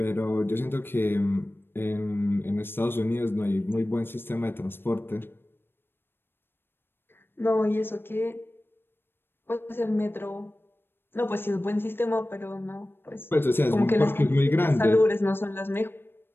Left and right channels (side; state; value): right; late; 0.10 ms